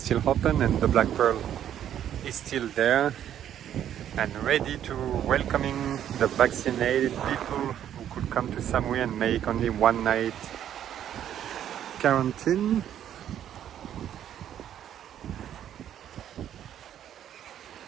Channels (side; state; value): left; quieter; 10.4 dB